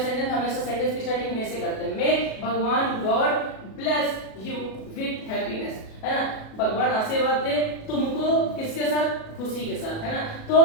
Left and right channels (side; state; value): right; late; 37 ms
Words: हमेशा सेंटेंस की स्टार्टिंग मे से करते हैं। मे भगवान God bless you with happiness, है ना। भगवान आशीर्वाद दे तुमको किसके साथ? खुशी के साथ, है ना। तो